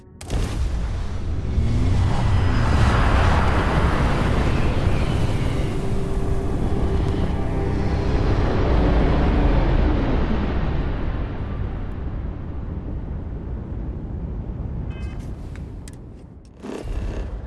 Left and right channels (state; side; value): identical; both; correlation 1.00